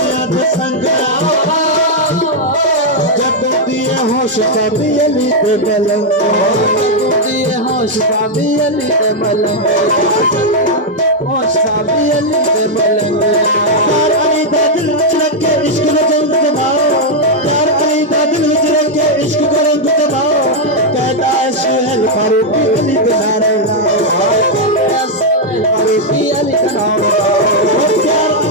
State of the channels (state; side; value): normal; both; correlation -0.01